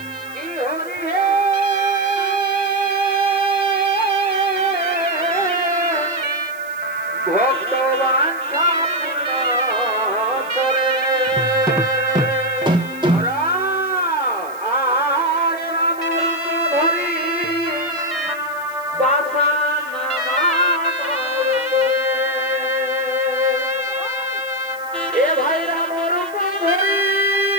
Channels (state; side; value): noise; right; hiss, 23 dB below the sound